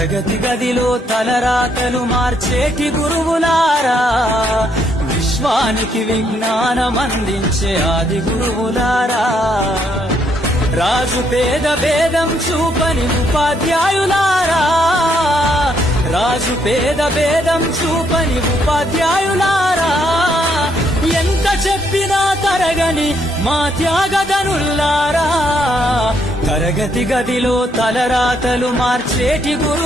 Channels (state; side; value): normal; both; correlation 0.72